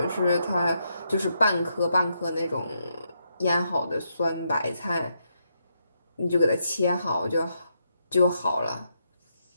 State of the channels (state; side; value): inverted; both; correlation -0.80